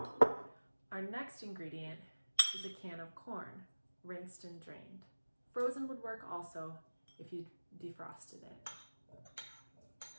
Our next ingredient is a can of corn, rinsed and drained. Frozen would work also if you defrosted it.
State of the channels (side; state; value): both; inverted; correlation -1.00